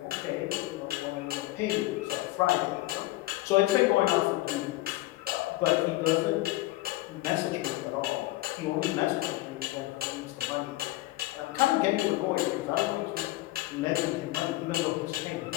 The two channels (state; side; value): quieter; right; 18.5 dB